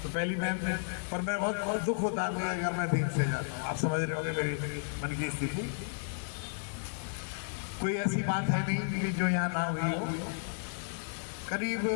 तो पहली बात में और मेरा बहुत दुख होता है मुझे अगर मैं देर से जाता हूँ। आप समझ रहे होंगे मेरी मन की स्थिति। कोई ऐसी बात है नहीं कि जो यहाँ ना हुई हो। करीब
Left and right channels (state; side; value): silent; right; digital silence